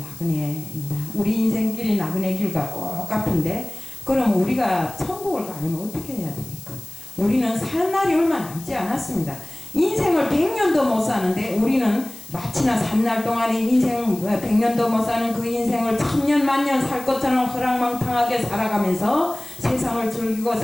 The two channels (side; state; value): left; noise; hiss, 17 dB below the sound